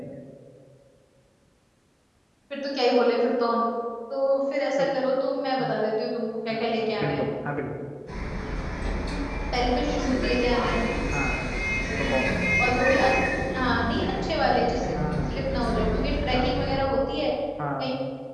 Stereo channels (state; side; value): identical; both; correlation 1.00